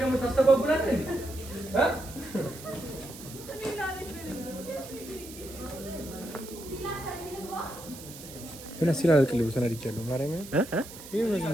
ምን ሲል አልቅልብ ተናድጃለሁ። ማርያም ይሄ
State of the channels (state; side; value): noise; right; hiss, 15 dB below the sound